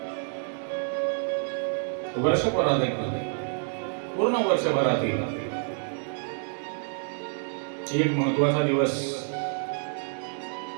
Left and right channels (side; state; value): left; silent; 58 dB below the other